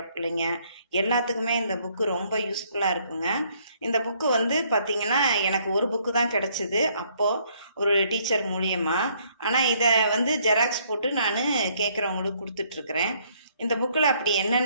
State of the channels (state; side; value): inverted; both; correlation -0.67